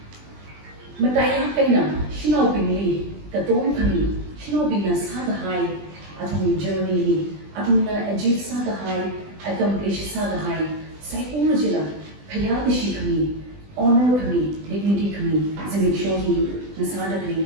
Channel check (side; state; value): left; late; 20 ms